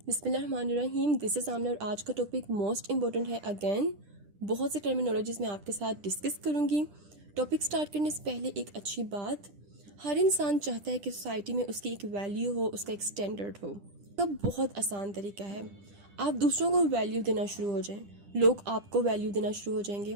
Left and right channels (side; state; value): left; late; 10 ms